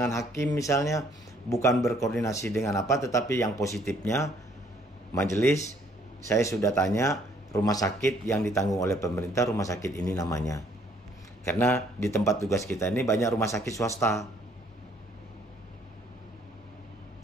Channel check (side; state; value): both; normal; correlation 0.63